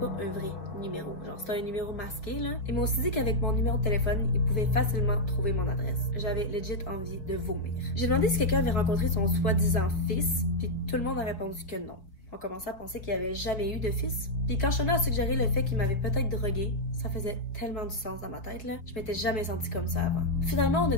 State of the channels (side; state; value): right; late; 5.2 ms